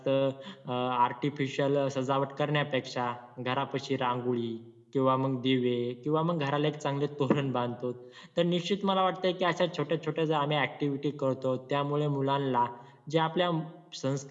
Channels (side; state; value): both; identical; correlation 1.00